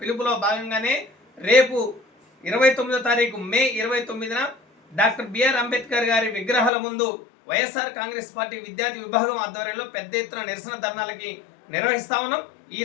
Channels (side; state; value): right; drops out; at 6.7 s